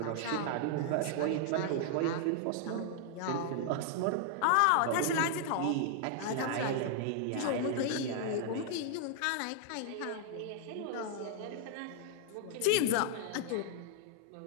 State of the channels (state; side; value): different; both; correlation 0.00